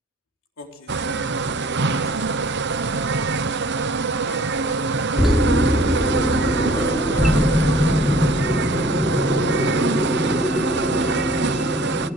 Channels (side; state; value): both; normal; correlation 0.52